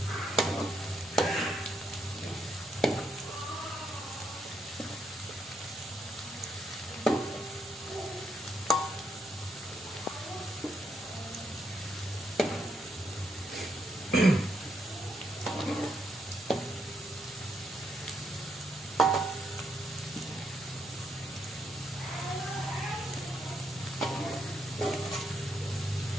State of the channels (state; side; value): normal; both; correlation 0.77